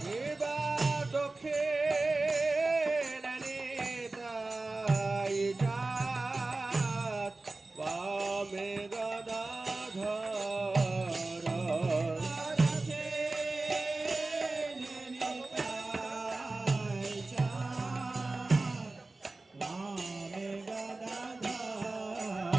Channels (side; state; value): left; quieter; 3.3 dB